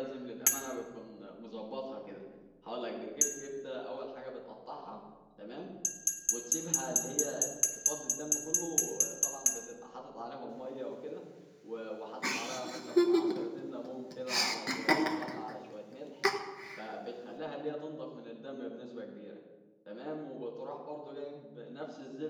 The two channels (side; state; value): both; identical; correlation 1.00